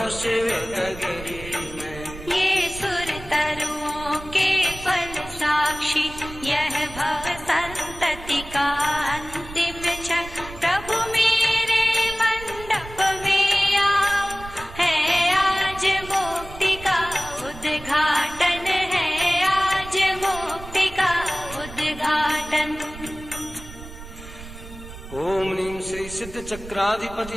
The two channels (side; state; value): right; noise; rumble, 14 dB below the sound